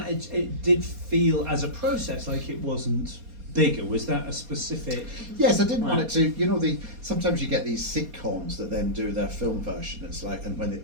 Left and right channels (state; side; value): late; left; 4.2 ms